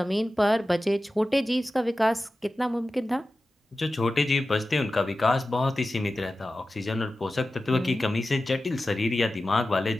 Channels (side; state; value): both; normal; correlation 0.94